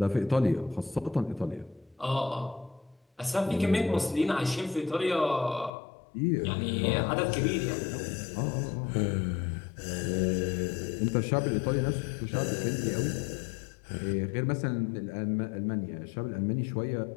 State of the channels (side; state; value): right; drops out; at 5.7 s